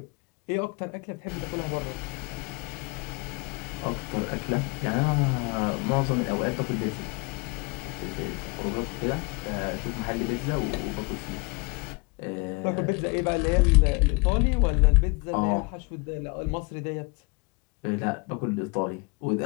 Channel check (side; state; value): right; quieter; 29.0 dB